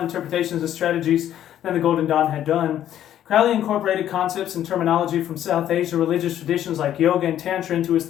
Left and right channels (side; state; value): right; quieter; 11.3 dB